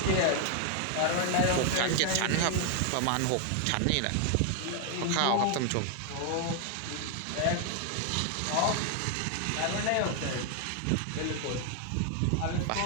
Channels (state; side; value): different; both; correlation 0.00